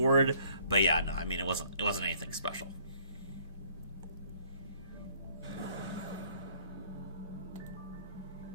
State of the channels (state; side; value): inverted; both; correlation -0.61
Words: But yeah, no, I mean, it wasn't anything special.